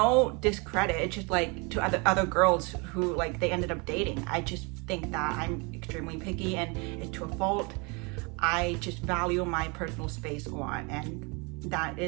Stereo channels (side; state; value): left; quieter; 30.2 dB